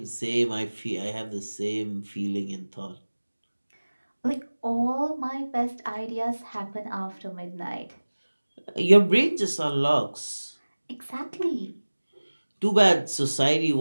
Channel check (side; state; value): both; inverted; correlation -1.00